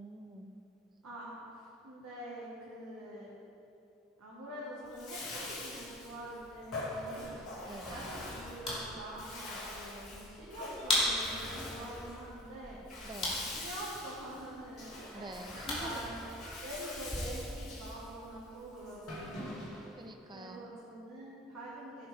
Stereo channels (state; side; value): normal; both; correlation 0.36